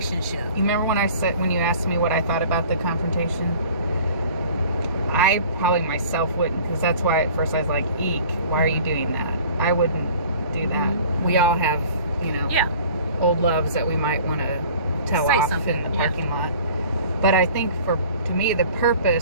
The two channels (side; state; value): both; inverted; correlation -0.47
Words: You remember when you asked me what I thought about the confrontation? I probably myself wouldn't, because that's why at first I was like, eek, why are you doing that? I wouldn't do that. We all have, you know, old loves that we might want to tell off in the parking lot. But I think to me,